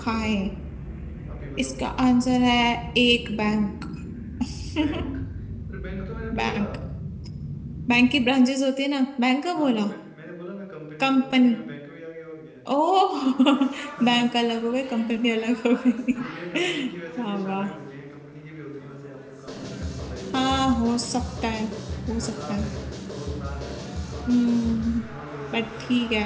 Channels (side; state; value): both; identical; correlation 1.00